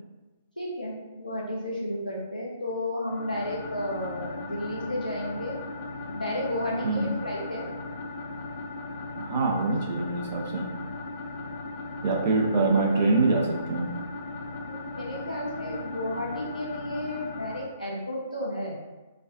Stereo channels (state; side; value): inverted; both; correlation -0.65